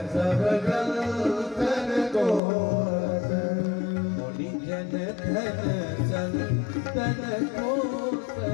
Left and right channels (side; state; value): right; drops out; at 2.4 s